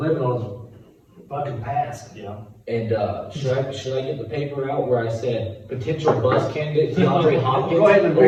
on his fucking past. Yeah. And, should I get the paper out where I said potential bust candidate DeAndre Hopkins? Go ahead and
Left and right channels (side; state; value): both; identical; correlation 1.00